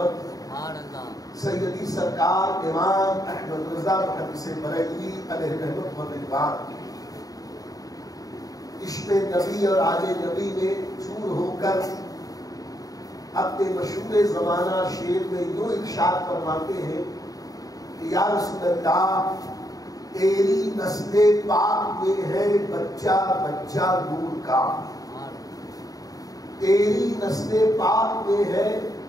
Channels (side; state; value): right; late; 0.18 ms